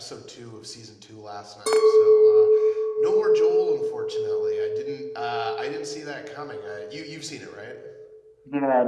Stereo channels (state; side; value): identical; both; correlation 1.00